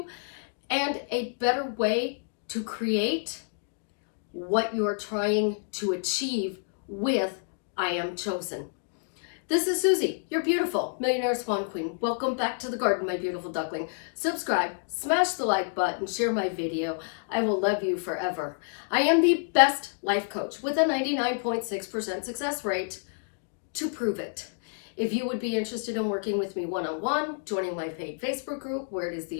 and a better way to create what you're trying to achieve with I am chosen. This is Susie, your beautiful millionaire swan queen. Welcome back to the garden, my beautiful duckling. Subscribe, smash the like button, share my video. I will love you forever. I am the best life coach with a 99.6% success rate to prove it. If you would be interested in working with me one-on-one, joining my paid Facebook group, where it is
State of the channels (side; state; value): right; silent; digital silence